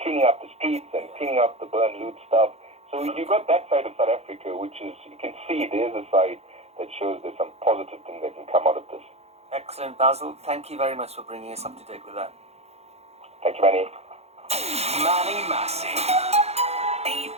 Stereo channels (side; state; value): left; late; 0.31 ms